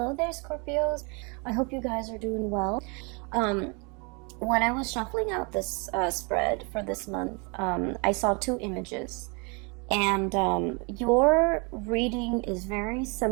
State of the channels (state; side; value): quieter; left; 32.7 dB